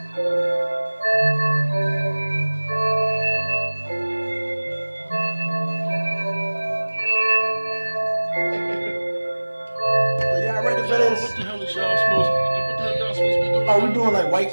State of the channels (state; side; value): inverted; both; correlation -1.00